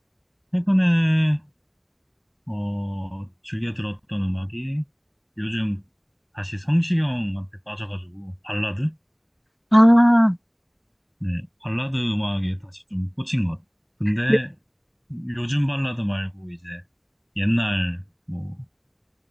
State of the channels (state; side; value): identical; both; correlation 1.00